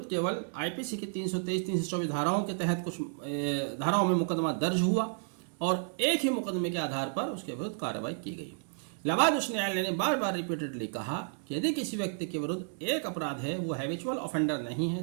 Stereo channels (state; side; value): silent; left; digital silence